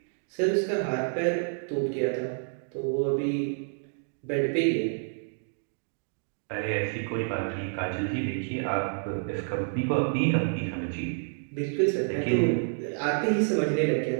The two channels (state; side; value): silent; left; digital silence